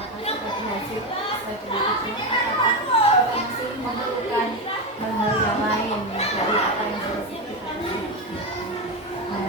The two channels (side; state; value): both; normal; correlation 0.13